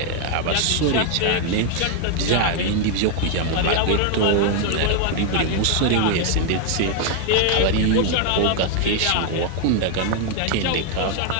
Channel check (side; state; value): both; different; correlation 0.00